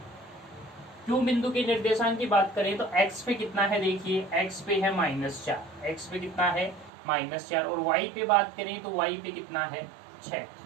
क्यों बिंदु के निर्देशांक की बात करें तो x पे कितना है, देखिए x पे है -4, x पे कितना है -4। और y पे बात करें तो y पे कितना है, 6।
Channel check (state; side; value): drops out; left; at 6.9 s